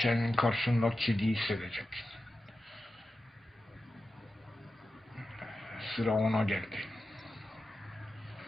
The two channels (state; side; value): normal; both; correlation 0.92